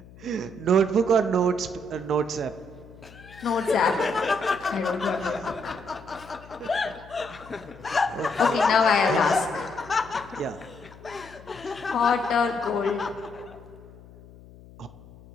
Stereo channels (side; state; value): left; noise; hum, 21 dB below the sound